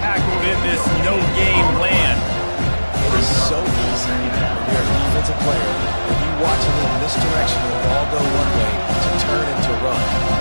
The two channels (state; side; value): inverted; both; correlation -1.00